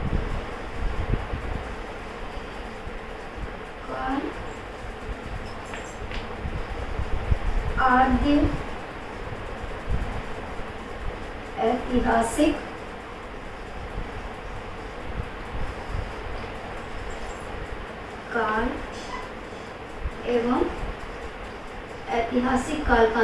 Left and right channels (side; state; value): both; identical; correlation 1.00